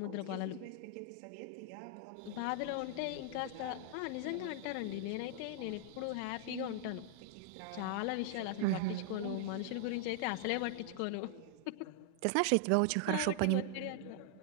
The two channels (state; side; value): different; both; correlation 0.00